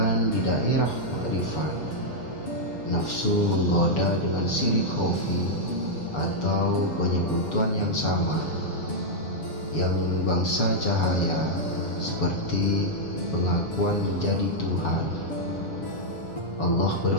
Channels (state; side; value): late; right; 7.1 ms